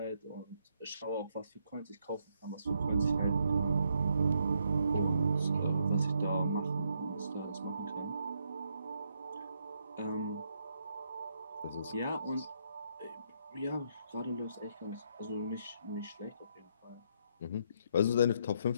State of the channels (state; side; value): inverted; both; correlation -0.75